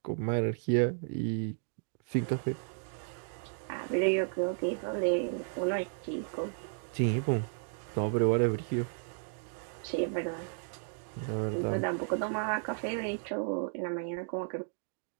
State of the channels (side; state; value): left; silent; digital silence